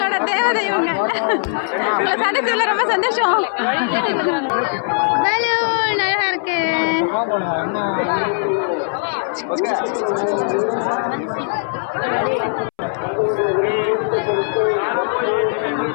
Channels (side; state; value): right; silent; 66 dB below the other